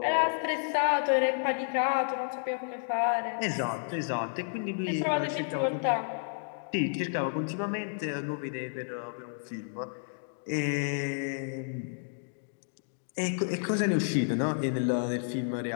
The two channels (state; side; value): silent; right; digital silence